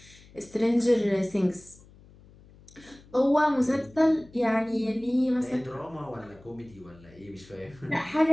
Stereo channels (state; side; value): noise; left; hum, 24 dB below the sound